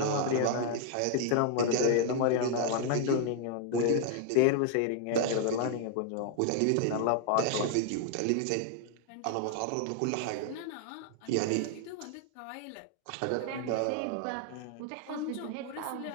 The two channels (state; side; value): different; both; correlation 0.00